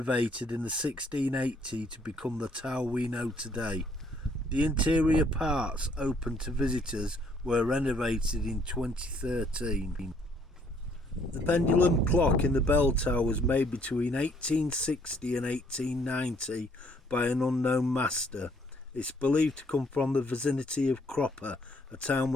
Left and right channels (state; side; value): normal; both; correlation 0.65